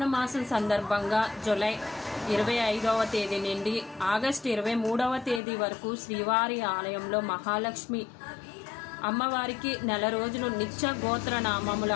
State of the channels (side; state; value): right; drops out; at 5.4 s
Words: మాసం సందర్భంగా జూలై 25వ తేదీ నుండి ఆగస్టు 23వ తేదీ వరకు శ్రీవారి ఆలయంలో మహాలక్ష్మి అమ్మవారికి నెల రోజులు నిత్య గోత్ర నామముల